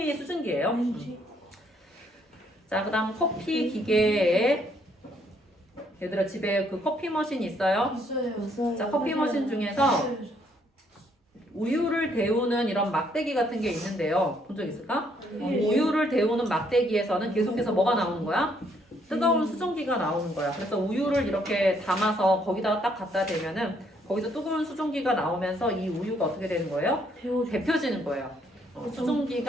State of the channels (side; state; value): both; normal; correlation 0.69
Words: 수증기예요. 자, 그다음 커피 기계에 얘들아 집에 그 커피 머신 있어요? 있어요. 자, 커피 머신 중에서 우유를 데우는 이런 막대기 같은 게 있는데요. 본 적 있을까? 우유를 데우는 막대기에서는 계속해서 뭐가 나오는 거야? 뜨거운 수증기가 나오는 거야. 그래서 우유를 이렇게 담아서 거기다가 딱 갖다 대면은 거기서 뜨거운 수증기가 나오면서 이 우유가 어떻게 되는 거예요? 데펴지는 거예요.